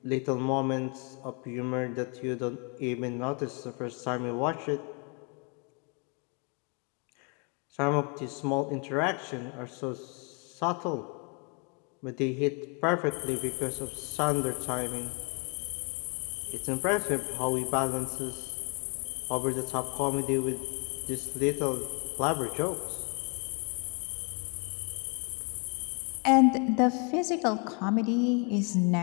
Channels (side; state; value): right; quieter; 35.4 dB